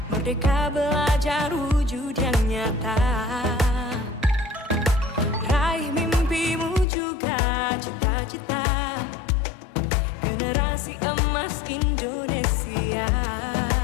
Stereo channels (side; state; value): right; drops out; at 6.9 s